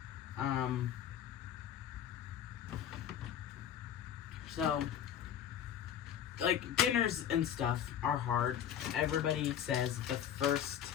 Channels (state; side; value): quieter; right; 9.6 dB